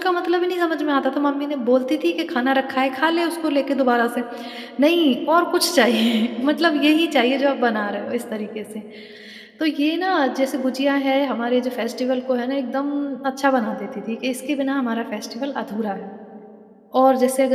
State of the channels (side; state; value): both; identical; correlation 1.00